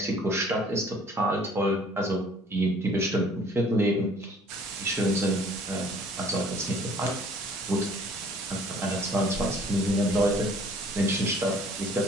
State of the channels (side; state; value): both; normal; correlation 0.54